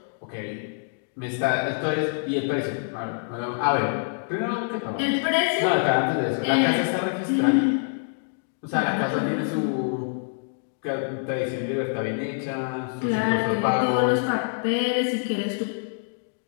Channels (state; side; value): silent; right; digital silence